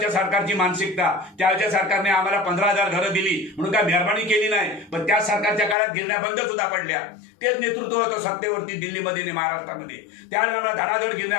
सरकारची मानसिकता. त्यावेळच्या सरकारने आम्हाला 15,000 घरं दिली म्हणून काय मेहरबानी केली नाही, पण त्या सरकारच्या काळात गिरण्या बंद सुद्धा पडल्या. तेच नेतृत्व होतं सत्तेवरती दिल्लीमध्ये आणि महाराष्ट्रामध्ये. त्यावेळेला धडाधड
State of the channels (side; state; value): right; drops out; at 5.8 s